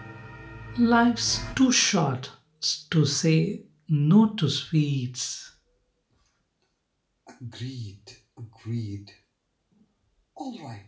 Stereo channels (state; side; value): identical; both; correlation 1.00